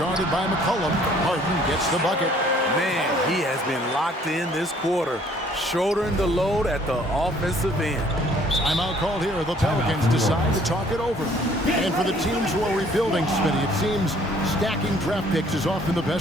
by McCollum. Harden gets the bucket. Man, he has been locked in this quarter, shouldering the load at the offensive end. Timeout called here. The Pelicans decide to talk it over. And for the teams who are rebuilding, Smitty, it seems stacking draft picks is often the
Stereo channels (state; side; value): normal; both; correlation 0.59